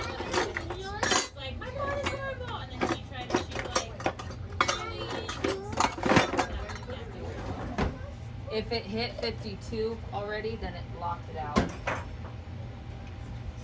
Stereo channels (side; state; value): both; identical; correlation 1.00